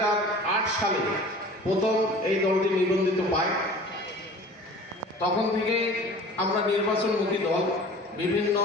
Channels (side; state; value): both; normal; correlation 0.43